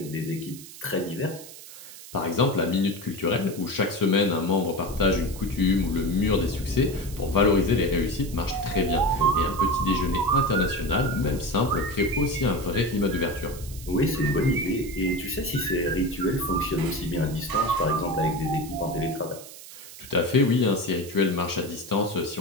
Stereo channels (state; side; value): noise; right; hiss, 16 dB below the sound